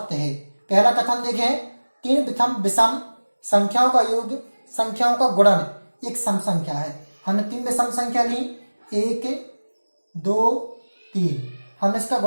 है। पहला कथन देखें, 3 विषम संख्याओं का योग, संख्याओं का गुणन एक सम संख्या है। हमने 3 विषम संख्या ली, 1 2 3, हमने इसका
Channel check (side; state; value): both; inverted; correlation -1.00